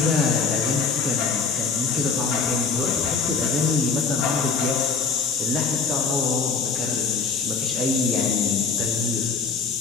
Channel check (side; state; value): right; quieter; 5.0 dB